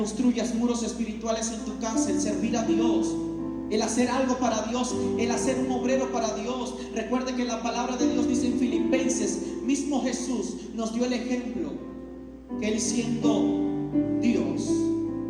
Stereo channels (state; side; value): identical; both; correlation 1.00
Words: muros espirituales en tu casa. El servir a Dios, el hacer algo para Dios, el hacer un obrero para Dios. Recuerde que la palabra de Dios dice en Filipenses, mismo Jesús nos dio el ejemplo, que Él siendo